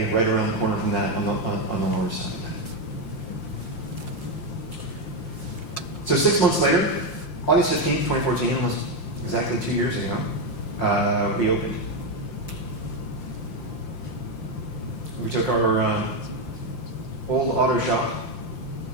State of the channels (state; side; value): late; right; 5.7 ms